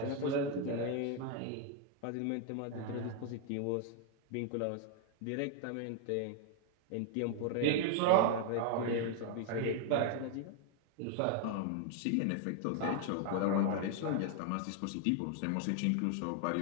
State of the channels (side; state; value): both; different; correlation 0.00